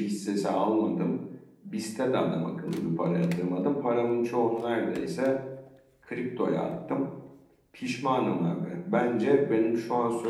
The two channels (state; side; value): identical; both; correlation 1.00